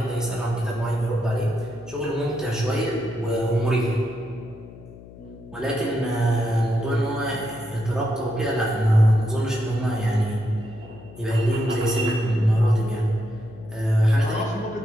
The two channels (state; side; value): noise; left; hum, 18 dB below the sound